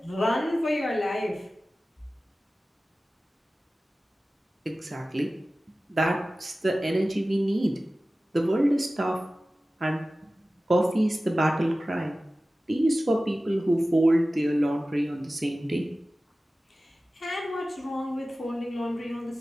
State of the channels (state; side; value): normal; both; correlation 0.96